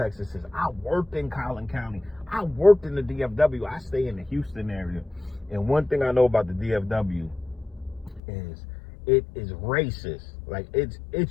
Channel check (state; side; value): drops out; right; at 8.2 s